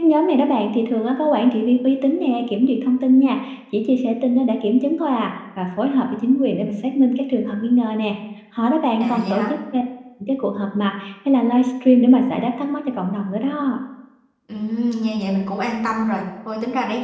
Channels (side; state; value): both; identical; correlation 1.00